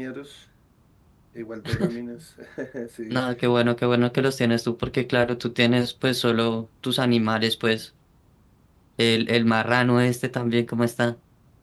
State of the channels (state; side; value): identical; both; correlation 1.00